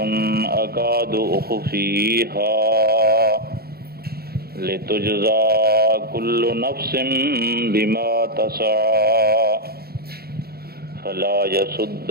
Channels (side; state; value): left; late; 0.45 ms